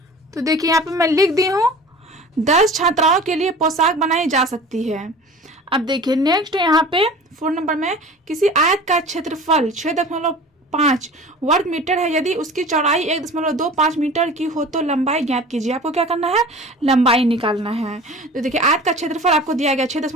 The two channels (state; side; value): normal; both; correlation 0.40